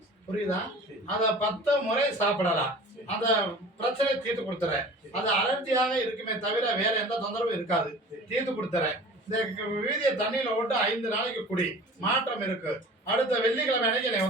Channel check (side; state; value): both; normal; correlation 0.42